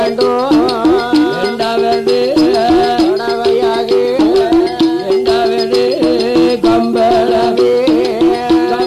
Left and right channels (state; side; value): identical; both; correlation 1.00